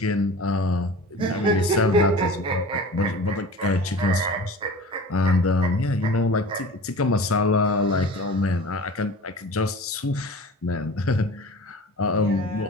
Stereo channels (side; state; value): both; normal; correlation 0.38